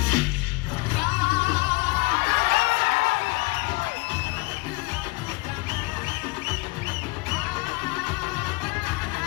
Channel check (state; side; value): quieter; right; 24.8 dB